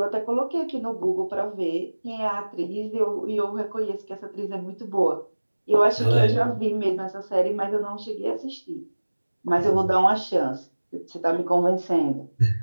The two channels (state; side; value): inverted; both; correlation -1.00